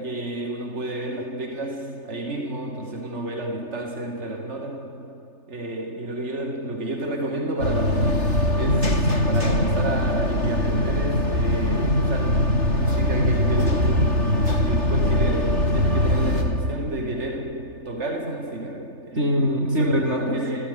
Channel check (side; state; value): left; late; 3.3 ms